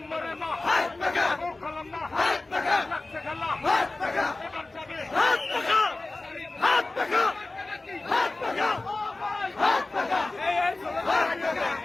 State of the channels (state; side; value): quieter; right; 3.1 dB